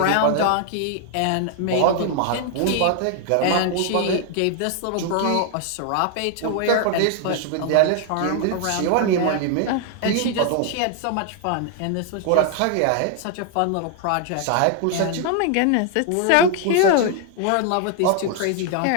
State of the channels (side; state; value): both; different; correlation 0.00